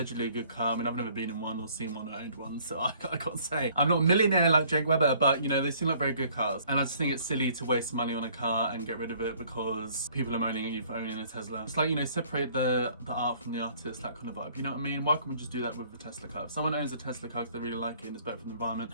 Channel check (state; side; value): inverted; both; correlation -0.58